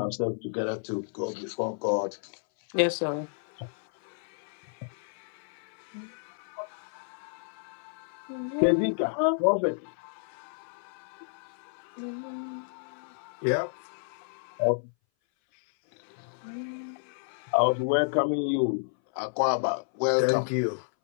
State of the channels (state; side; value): silent; right; 57 dB below the other